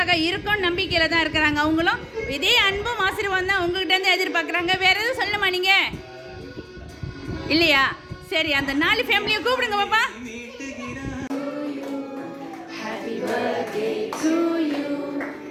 இருக்கும் நம்பிக்கையில் தான் இருக்கிறாங்க. அவங்களும் இதே அன்பும் ஆசீர்வாதம் தான் உங்ககிட்ட இருந்து எதிர்பார்க்குறாங்க. வேற எதுவும் சொல்லணுமா நீங்கள்? இல்லையா? சரி, அந்த 4 ஃபேமிலியை கூப்பிடுங்க பாப்பா. Happy birthday to you,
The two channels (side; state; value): both; identical; correlation 1.00